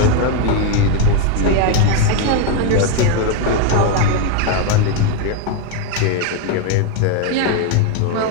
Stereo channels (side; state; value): both; different; correlation 0.02